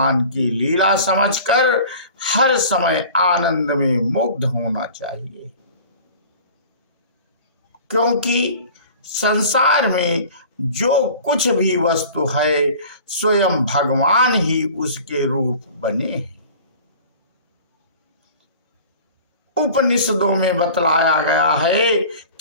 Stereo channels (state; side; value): inverted; both; correlation -0.43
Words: की लीला समझकर हर समय आनंद में मुग्ध होना चाहिए, क्योंकि संसार में जो कुछ भी वस्तु है स्वयं भगवान ही उसके रूप बने हैं। उपनिषदों में बतलाया गया है